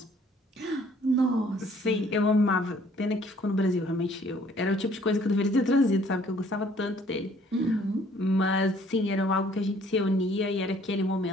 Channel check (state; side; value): normal; both; correlation 0.59